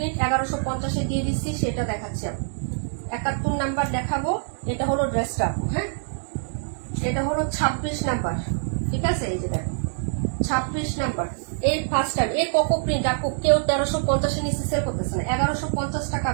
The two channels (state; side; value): silent; left; 62 dB below the other